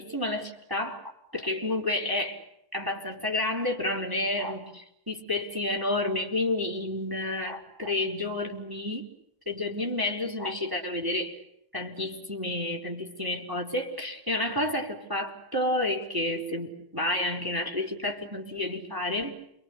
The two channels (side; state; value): left; late; 1.0 ms